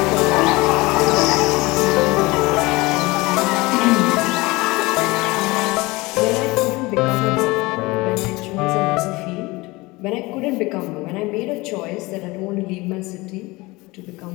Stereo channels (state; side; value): quieter; right; 22.4 dB